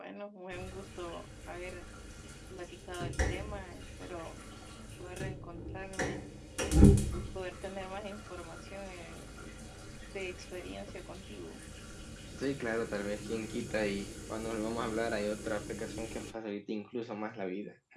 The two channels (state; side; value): identical; both; correlation 1.00